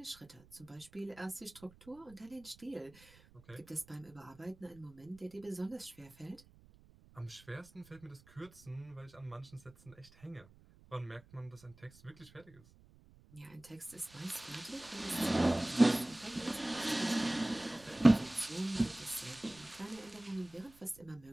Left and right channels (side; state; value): right; noise; rumble, 24 dB below the sound